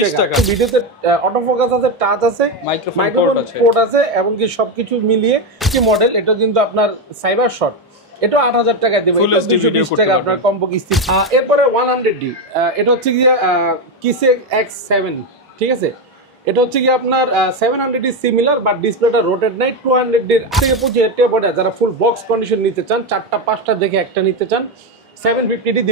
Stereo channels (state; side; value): normal; both; correlation 0.09